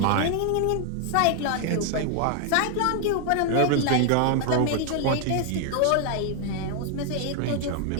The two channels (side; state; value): both; different; correlation 0.00